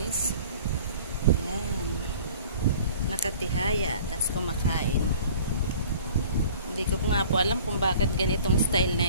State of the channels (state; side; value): inverted; both; correlation -0.48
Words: Yan. Nakatihaya, tas kumakain. Hindi ko nga po alam kung bakit ganitong style